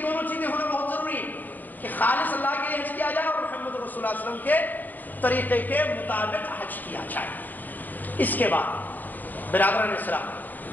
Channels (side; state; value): right; late; 0.086 ms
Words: دونوں چیزیں ہونا بہت ضروری ہیں کہ خالص اللہ کے لیے حج کیا جائے اور محمد رسول اللہ صلی اللہ علیہ وسلم کے طریقے کے مطابق حج کیا جائے۔ اس کے بعد برادران اسلام،